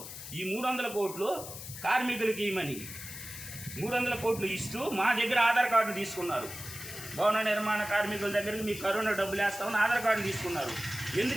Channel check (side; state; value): left; noise; hiss, 11 dB below the sound